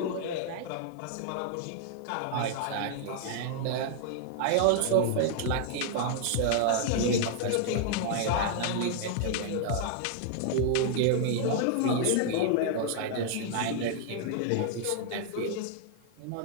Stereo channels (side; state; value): both; different; correlation -0.01